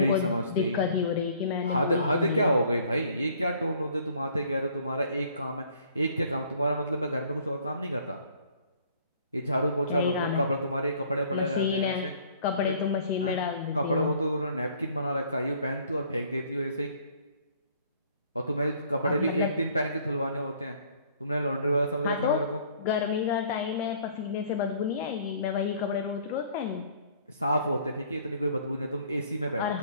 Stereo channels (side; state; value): both; inverted; correlation -0.57